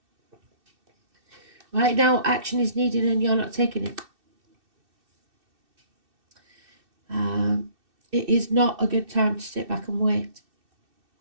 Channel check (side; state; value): left; late; 2.6 ms